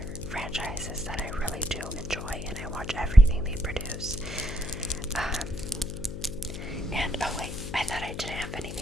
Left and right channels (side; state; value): left; noise; hum, 8 dB below the sound